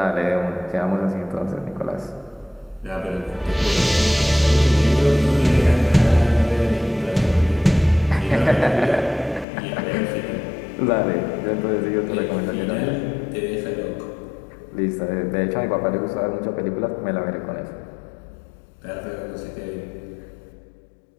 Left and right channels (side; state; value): right; drops out; at 9.5 s